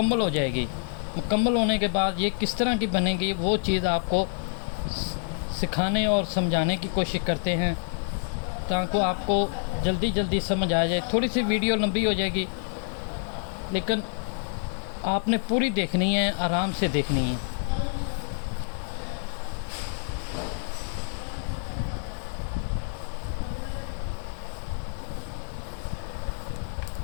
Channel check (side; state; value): right; silent; digital silence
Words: हो जाएगी। मुकम्मल होने के बाद ये किस तरह की बनेगी वो चीज़ आपको सिखाने और समझाने की कोशिश करते हैं, ताकि आपको जल्दी जल्दी समझ आ जाए। थोड़ी सी वीडियो लंबी हो जाएगी, लेकिन आपने पूरी देखनी है, आराम से देखनी है।